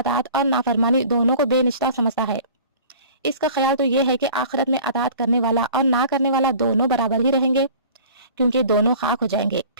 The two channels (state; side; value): inverted; both; correlation -0.45